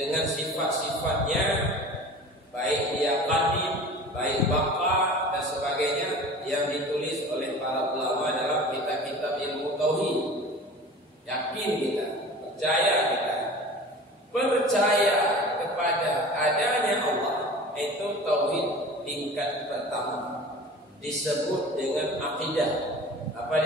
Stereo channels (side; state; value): both; normal; correlation 0.39